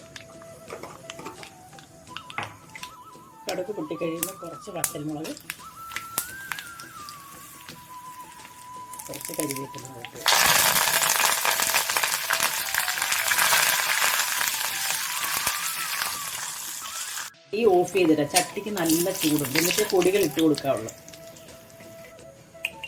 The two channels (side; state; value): both; identical; correlation 1.00